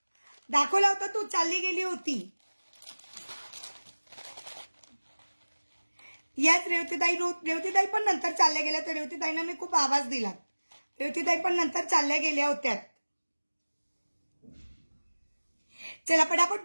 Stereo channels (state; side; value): inverted; both; correlation -1.00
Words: दाखवला होता? तू चालली गेली होती। याच रेवतीताई पण नंतर चालल्या गेल्या। तर रेवतीताईंना मी खूप आवाज दिला। रेवतीताई पण नंतर चालल्या गेल्या होत्या। चला पटापट